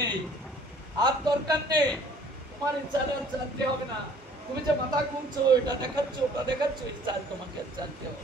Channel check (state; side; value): normal; both; correlation 0.55